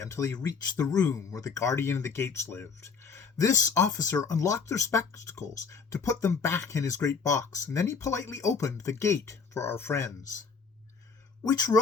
they reached the room where the guardian of the gates lived. This officer unlocked their spectacles to put them back in his great box, and then he politely opened the gate for our friends. "Which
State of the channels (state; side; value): quieter; right; 5.5 dB